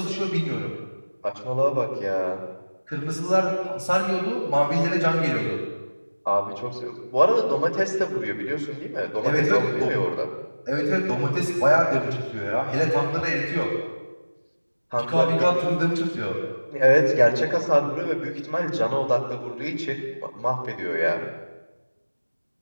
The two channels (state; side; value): inverted; both; correlation -1.00